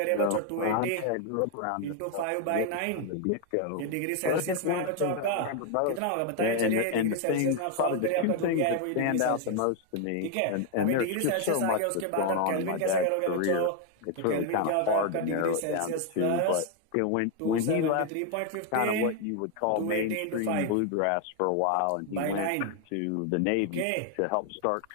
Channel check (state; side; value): different; both; correlation 0.01